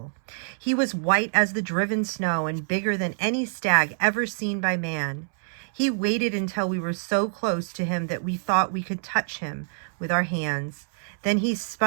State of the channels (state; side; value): silent; left; 61 dB below the other